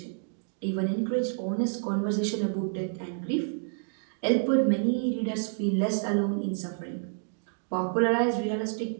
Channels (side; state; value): left; silent; digital silence